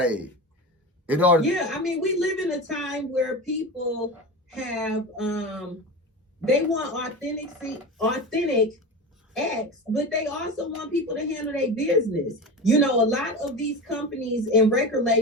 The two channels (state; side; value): normal; both; correlation 0.26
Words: In order I mean, we live in a time where people have, they want authentic X, but they also want people to handle their business. You know, a lot of these companies and record